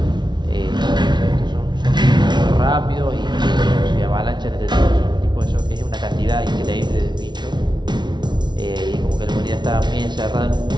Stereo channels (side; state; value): left; late; 0.21 ms